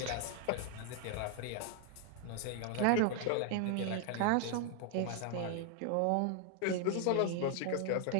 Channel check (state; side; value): different; both; correlation 0.00